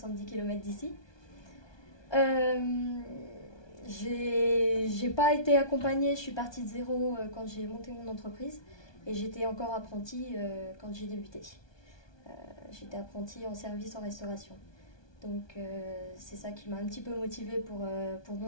km d'ici. J'ai pas été accompagnée, je suis partie de zéro quand j'ai monté mon entreprise et j'étais encore apprentie quand j'ai débuté. J'étais apprentie en service en restauration. Donc c'est ça qui m'a un petit peu motivée pour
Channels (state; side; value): late; right; 1.2 ms